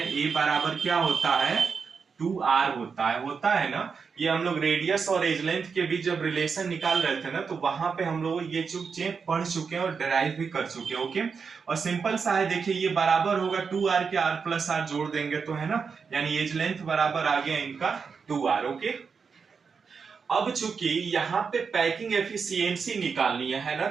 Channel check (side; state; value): left; quieter; 5.6 dB